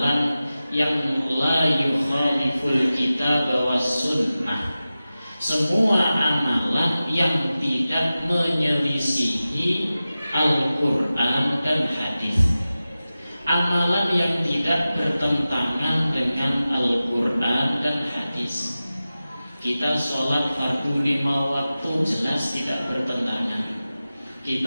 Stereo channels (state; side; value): inverted; both; correlation -0.95